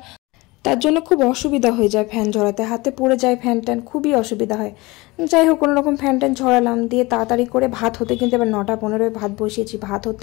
তার জন্য খুব অসুবিধা হয়ে যায়, ফ্যান ঝরাতে হাতে পড়ে যায়, ফ্যান ট্যান খুবই অসুবিধা হয়। যাই হোক, কোনো রকম ফ্যান ট্যান ঝরালাম, দিয়ে তাড়াতাড়ি করে ভাত হতে, কিন্তু এবার 9:15 ভাত বসিয়েছি, ভাত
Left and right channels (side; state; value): right; quieter; 22.7 dB